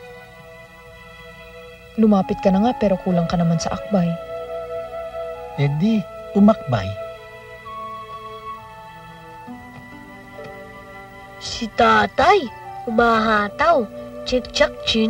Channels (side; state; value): both; identical; correlation 1.00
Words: Lumapit ka na nga pero kulang ka naman sa akbay. Eh di, umakbay. Si tatay, umahataw. Chik-chak